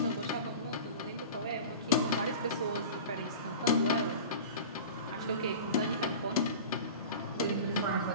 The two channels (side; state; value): both; inverted; correlation -0.35